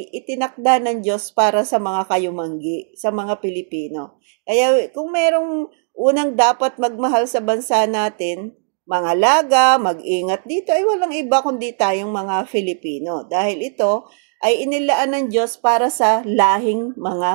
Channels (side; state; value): left; silent; digital silence